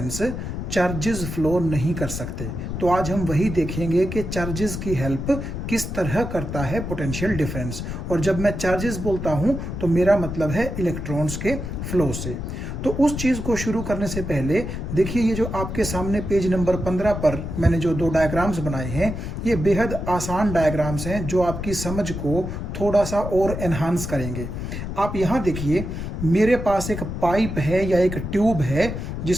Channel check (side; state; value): left; noise; rumble, 5 dB below the sound